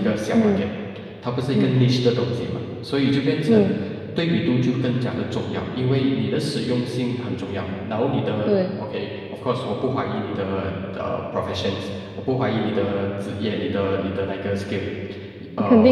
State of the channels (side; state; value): both; identical; correlation 1.00